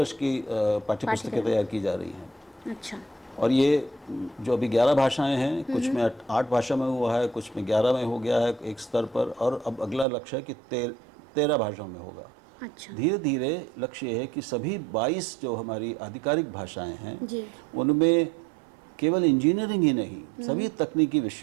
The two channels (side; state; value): left; drops out; at 10.1 s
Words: की पाठ्यपुस्तकें तैयार की जा रही हैं। अच्छा। और ये जो अभी 11 भाषाएं हैं, कुछ में 8 भाषा में हुआ है, कुछ में 11 में हो गया है एक स्तर पर, और अब अगला लक्ष्य है कि 13 भाषाओं में होगा। अच्छा। धीरे धीरे लक्ष्य ये है कि सभी 22 जो हमारी आधिकारिक भाषाएं हैं जी। उनमें केवल इंजीनियरिंग ही नहीं, सभी तकनीकी